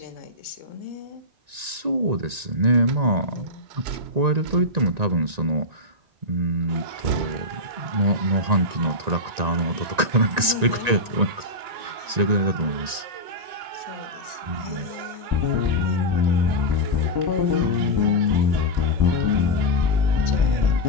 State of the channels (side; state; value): left; late; 1.9 ms